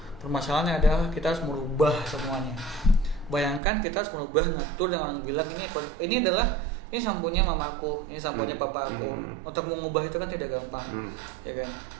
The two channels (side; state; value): left; drops out; at 3.6 s